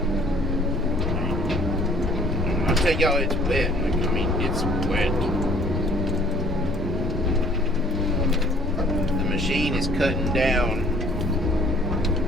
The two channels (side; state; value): both; normal; correlation 0.56